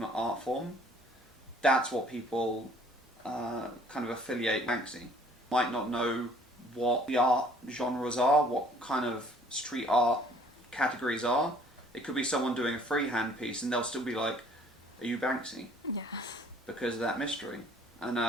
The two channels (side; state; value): both; normal; correlation 0.57